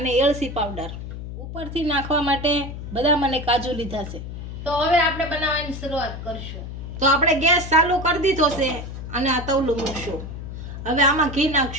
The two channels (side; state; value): left; noise; hum, 9 dB below the sound